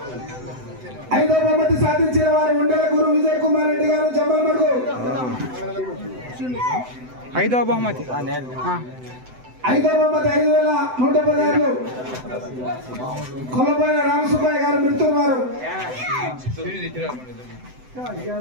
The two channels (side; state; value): left; late; 7.9 ms